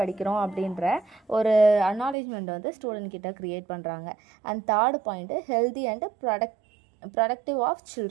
அப்படின்ற ஒரு அக்னாலேஜ்மெண்ட் வந்து ஸ்டூடெண்ட் கிட்ட க்ரியேட் பண்ணுறாங்க. And third point healthy and protective of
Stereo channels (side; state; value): left; drops out; at 2.1 s